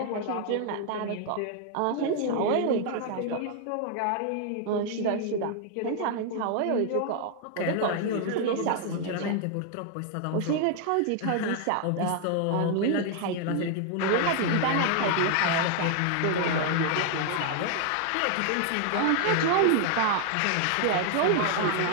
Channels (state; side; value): different; both; correlation 0.00